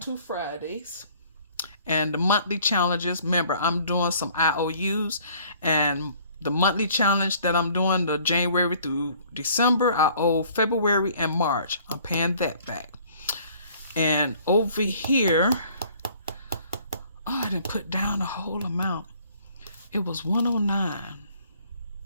Fridays. And the monthly challenges, remember, I'm doing some IOUs, and the monthly challenge that I'm doing, the January through December, I owe February and March. I'm paying that back. And over here, oh, I didn't put down the whole amount. It was 109.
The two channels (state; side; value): inverted; both; correlation -0.56